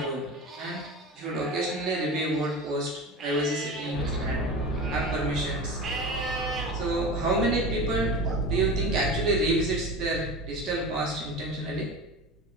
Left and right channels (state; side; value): normal; both; correlation 0.30